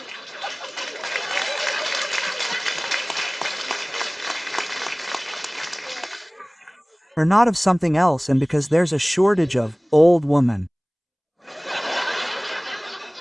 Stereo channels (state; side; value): identical; both; correlation 1.00